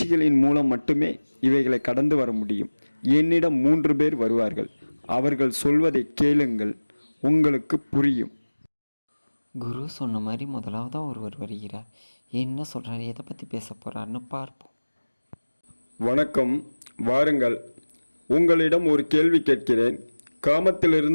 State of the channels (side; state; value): both; inverted; correlation -1.00